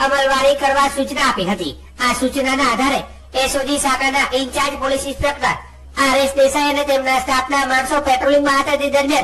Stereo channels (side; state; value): both; identical; correlation 1.00